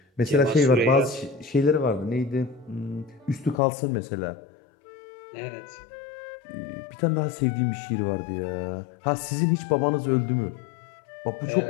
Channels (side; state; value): right; drops out; at 3.6 s